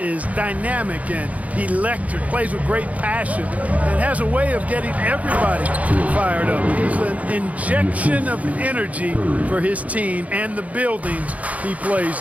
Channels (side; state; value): left; late; 0.070 ms